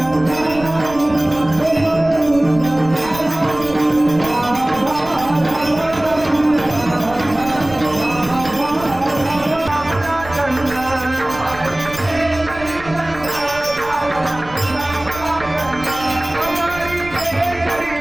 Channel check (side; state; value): right; noise; rumble, 17 dB below the sound